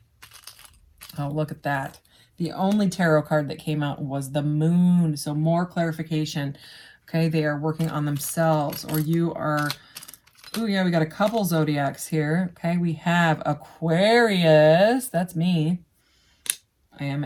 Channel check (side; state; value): both; identical; correlation 1.00